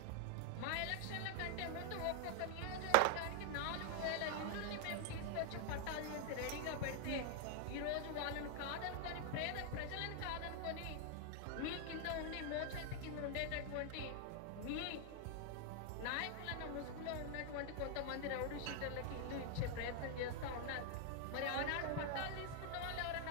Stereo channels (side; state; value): both; different; correlation 0.00